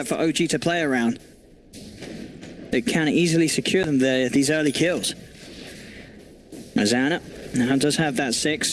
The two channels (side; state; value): both; identical; correlation 1.00